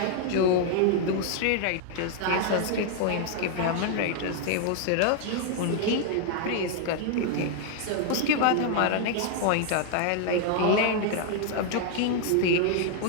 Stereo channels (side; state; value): both; different; correlation 0.00